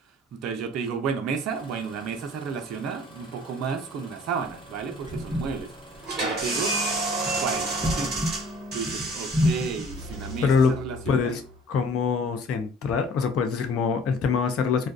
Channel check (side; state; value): both; normal; correlation 0.50